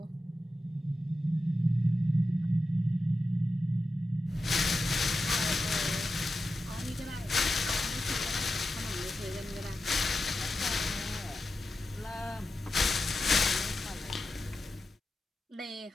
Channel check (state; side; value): normal; both; correlation 0.90